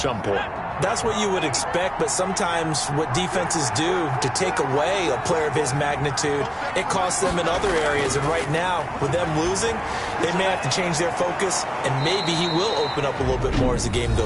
point. That's what you would expect, but sometimes what defenses do to take away a player of his magnitude, it costs them in other areas. And right now, with them losing, they may have to change their focus, and maybe he will open up a little bit more as the game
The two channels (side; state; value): both; identical; correlation 1.00